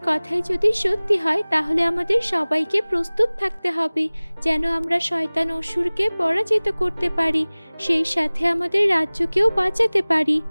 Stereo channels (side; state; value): both; inverted; correlation -1.00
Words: কথাই যদি সত্যি হয় তাহলে আমাদের সবাইকে প্রস্তুত থাকতে হবে, যেন আমরা শয়তান অসুরকে পরাজিত করতে পারি, সেই সাথে আমাদের রাজ্যকেও বাঁচাতে পারি।